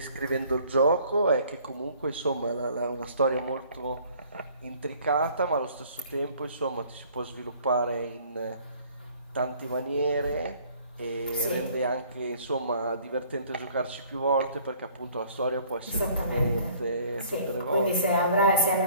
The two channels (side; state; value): both; inverted; correlation -0.57